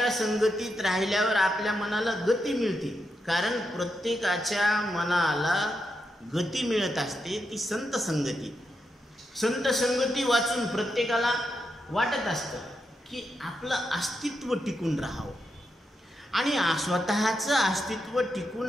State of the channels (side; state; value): both; normal; correlation 0.85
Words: संगतीत राहिल्यावर आपल्या मनाला गती मिळते, कारण प्रत्येकाच्या मनाला गती मिळत असते ती संत संगती। संत संगती वाचून प्रत्येकाला वाटत असतं की आपलं अस्तित्व टिकून राहावं, आणि स्वतःचं अस्तित्व